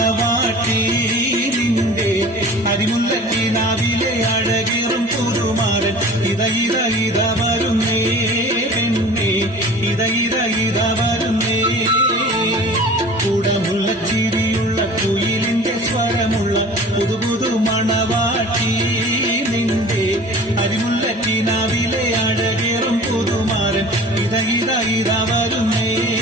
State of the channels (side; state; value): both; normal; correlation 0.43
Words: നിന്റെ അരിമുല്ലക്കിനാവിലെ അഴകേറും പുതുമാരൻ ഇത വരുന്നേ പെണ്ണേ ഇത വരുന്നേ. കുടമുല്ലച്ചിരിയുള്ള കുയിലിന്റെ സ്വരമുള്ള പുതുപുതു മണവാട്ടി നിന്റെ അരിമുല്ലക്കിനാവിലെ അഴകേറും പുതുമാരൻ ഇത വരുന്നേ